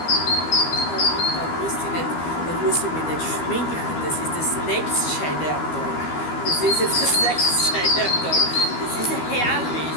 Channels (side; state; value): right; late; 12 ms